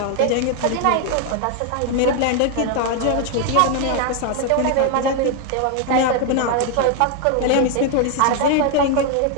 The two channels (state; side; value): different; both; correlation 0.00